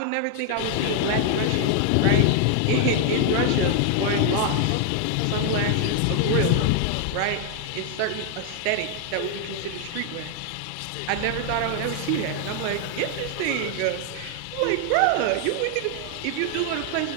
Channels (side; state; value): both; different; correlation 0.00